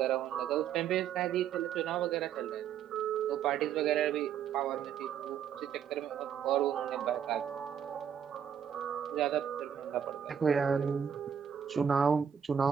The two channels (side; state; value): left; quieter; 8.4 dB